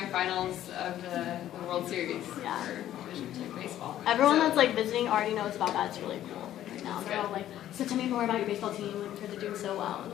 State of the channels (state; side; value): quieter; right; 12.3 dB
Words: of the World Series for Division II baseball. Everyone that's like visiting already knows about that. It's really cool right now. They're all like, so tell me more about your baseball team because they're doing so well. And